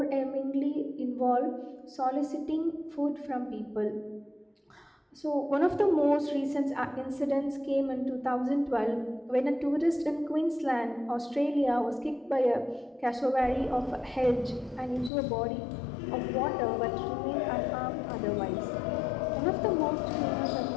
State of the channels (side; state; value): right; drops out; at 15.1 s